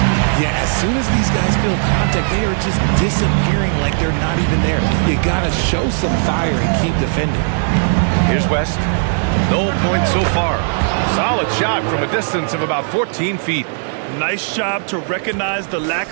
Yeah, as soon as these guys feel contact, they are just disappearing like they're not even there. You gotta show some fire and keep defending. Here's West. No points so far. Solid shot from a distance of about 14 feet. Nice job to recognize the lack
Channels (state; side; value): silent; left; digital silence